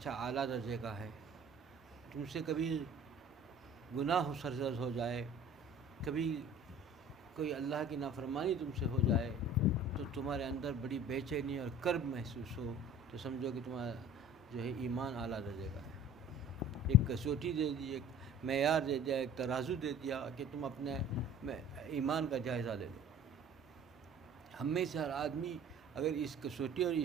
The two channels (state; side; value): normal; both; correlation 0.45